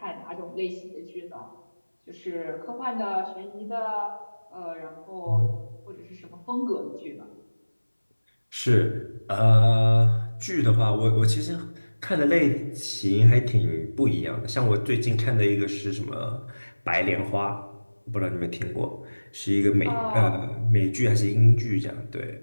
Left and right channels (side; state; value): both; inverted; correlation -1.00